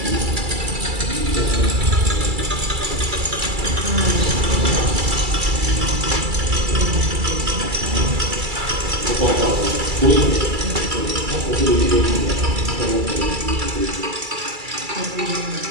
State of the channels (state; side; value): late; left; 2.3 ms